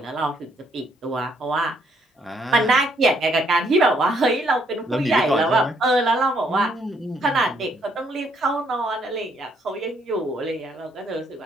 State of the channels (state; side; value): normal; both; correlation 0.70